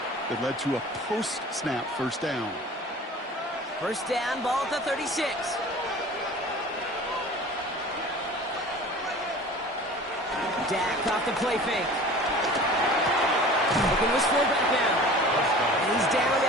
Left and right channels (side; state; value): both; normal; correlation 0.42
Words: that led to a post-snap first down. First down, ball at the 36. Dak off the play fake. Looking to his fullback now. And he's down